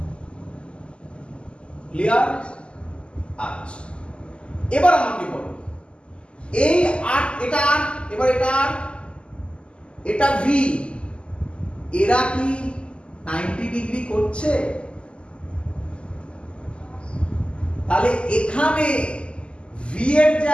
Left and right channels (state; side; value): late; right; 0.052 ms